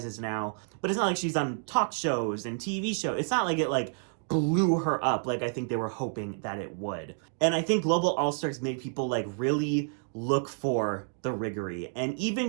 now, but it's not like she's on talk shows and TV shows. It's not like it, blew her up like I think they were hoping that it would. And I think Global All-Stars made people, really look for the riggery. And even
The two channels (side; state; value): left; silent; 58 dB below the other